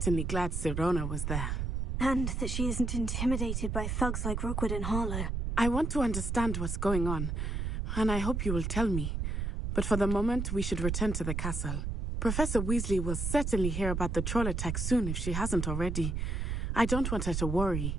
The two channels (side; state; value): right; noise; rumble, 1 dB below the sound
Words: glad Sirona was there. And that she isn't intimidated by thugs like Rookwood and Harlow. I want to understand what's going on, and I hope you will tell me. But for the moment, we should return to the castle. Professor Weasley will certainly hear about the troll attack soon if she hasn't already. I don't want her to